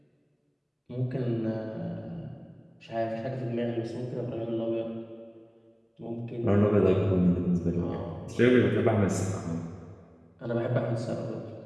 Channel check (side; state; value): both; identical; correlation 1.00